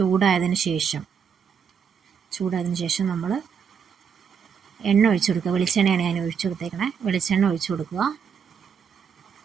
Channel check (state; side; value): quieter; left; 7.1 dB